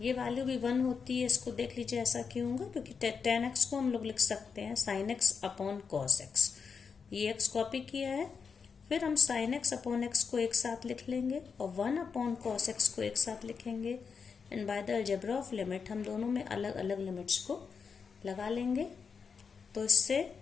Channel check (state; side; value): quieter; right; 5.8 dB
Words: ये वैल्यू भी 1 होती है। इसको देख लीजिए ऐसा क्यों होगा, क्योंकि टेन एक्स को हम लोग लिख सकते हैं sign x upon cos x. ये एक्स कॉपी किया है, फिर हम साइन एक्स अपॉन एक्स को एक साथ लिख लेंगे और 1 अपॉन कॉस एक्स को एक साथ लिखेंगे। And by the algebra of limit हम दोनों में अलग अलग लिमिट्स को लगा लेंगे। तो इससे